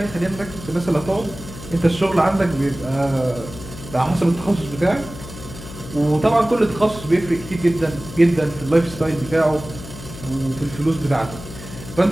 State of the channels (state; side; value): noise; left; hum, 14 dB below the sound